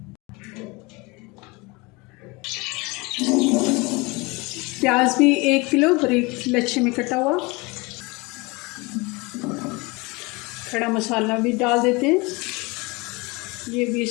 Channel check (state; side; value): quieter; right; 25.7 dB